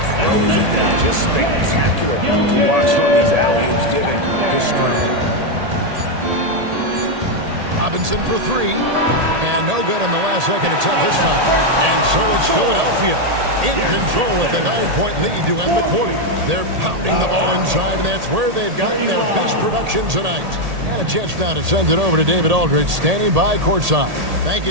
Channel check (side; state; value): left; late; 1.8 ms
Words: throws it down. Just spectacular to watch on these alley-oops given his strength. Robinson for three. And no good on the last second attempt this time. And so it's Philadelphia in control with a 9-point lead to end the quarter. They're pounding the ball inside, and that's where they've gotten their best production tonight. And a chance now to send it over to David Aldridge, standing by courtside. Thank